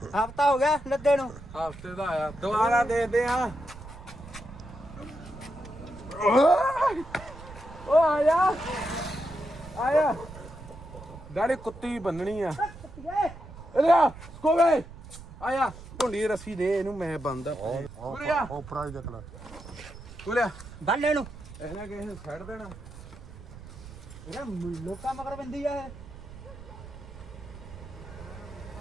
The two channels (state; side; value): noise; right; rumble, 15 dB below the sound